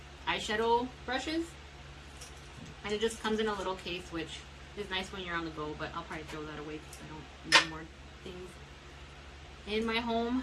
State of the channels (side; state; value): both; identical; correlation 1.00